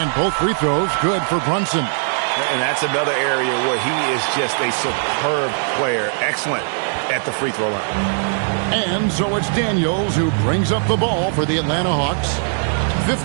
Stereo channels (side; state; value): left; silent; digital silence